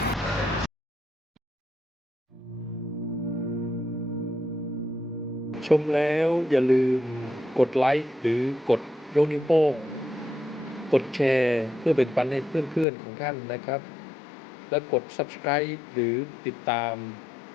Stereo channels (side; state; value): right; drops out; at 12.9 s